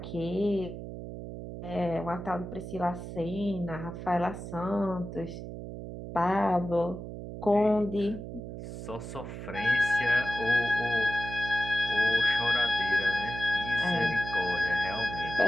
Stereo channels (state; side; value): noise; right; hum, 9 dB below the sound